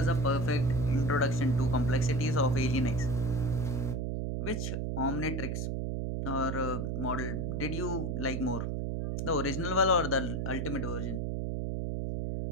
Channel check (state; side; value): noise; right; hum, 1 dB below the sound